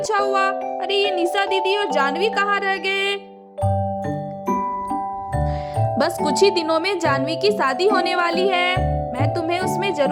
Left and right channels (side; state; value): both; identical; correlation 1.00